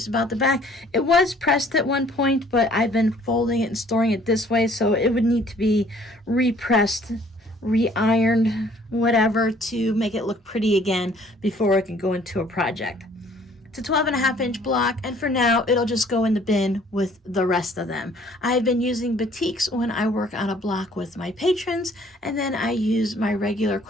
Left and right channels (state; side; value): normal; both; correlation 0.57